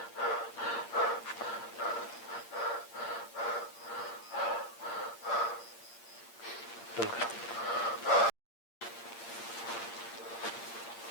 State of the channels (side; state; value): right; late; 8.7 ms